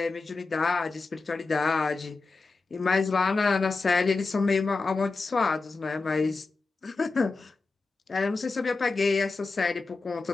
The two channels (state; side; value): quieter; right; 3.9 dB